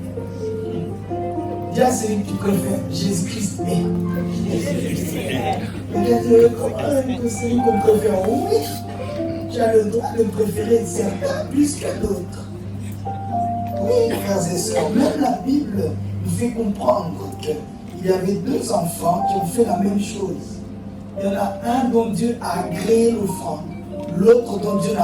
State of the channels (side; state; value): both; identical; correlation 1.00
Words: Dis à celui que tu préfères. Jésus-Christ est. Regarde, comment que celui qu'on préfère, oui, tu as le droit de préférer certains plus que d'autres. Oui, frères et sœurs, même la Bible nous fait comprendre qu'il y avait 2 enfants qui ont fait la même chose. Il y en a un dont Dieu a agréé l'offrande, l'autre dont Dieu